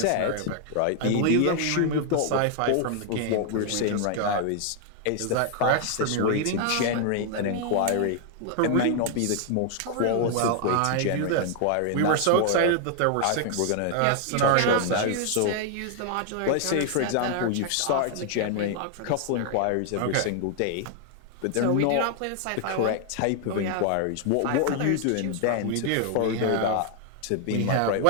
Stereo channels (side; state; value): both; different; correlation 0.00